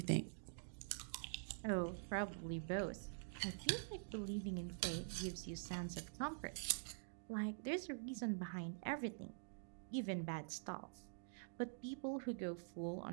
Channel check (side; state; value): left; silent; digital silence